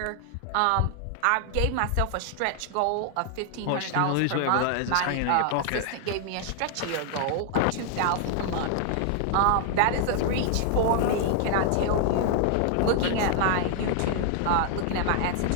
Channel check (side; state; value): both; different; correlation 0.00